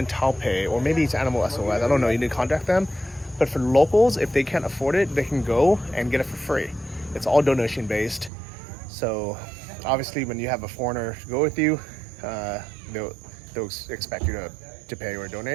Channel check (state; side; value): drops out; left; at 8.3 s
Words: Taipei, or maybe it's Animal SOS, I don't know, you need to contact them. But for locals, if they can't afford it, they can go and get it for free. It's all donation based. So obviously when you have a foreigner to go with you, they'll expect you to pay or